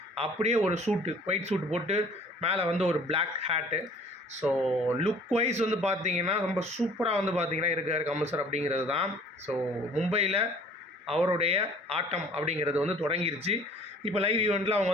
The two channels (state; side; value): normal; both; correlation 0.51